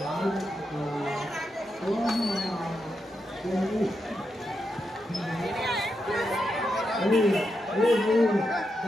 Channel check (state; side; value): normal; both; correlation 0.85